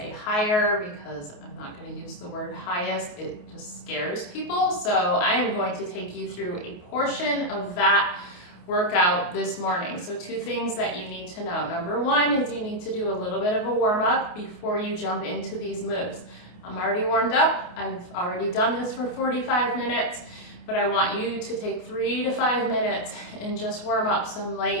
higher because I'm not going to use the word highest. It just scares people. So I am going to take you through a portion of that workout this morning. So two things that you need to know. Number one is you need to do a little bit of a warm up before you jump into these moves. I'm already warmed up. I've already done this for 45 minutes, but I want you to take 3 to 5 minutes and just warm up some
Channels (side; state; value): right; late; 28 ms